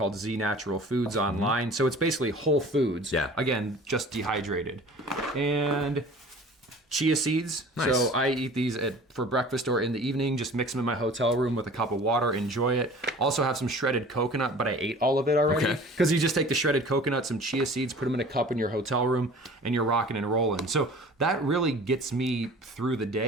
Z Natural Foods online. So it's basically whole foods. Yeah. Again, just dehydrated. And chia seeds. Nice. So I eat these for breakfast or in the evening. Just mix them in my hotel room with a cup of water. Enjoy it. Also have some shredded coconut, but I ate all of it already. Because you just take the shredded coconut, some chia seeds, put them in a cup in your hotel room, and you're rocking and rolling. So that really gets me through the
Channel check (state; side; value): normal; both; correlation 0.44